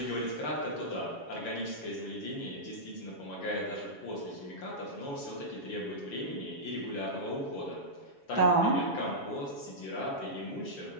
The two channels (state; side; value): late; right; 7.1 ms